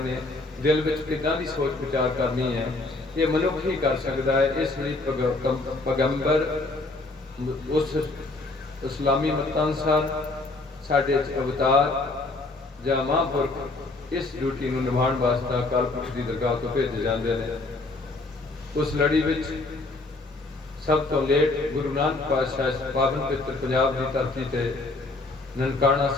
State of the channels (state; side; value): quieter; right; 3.1 dB